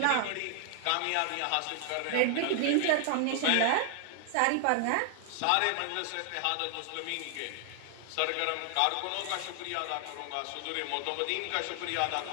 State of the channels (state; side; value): different; both; correlation 0.00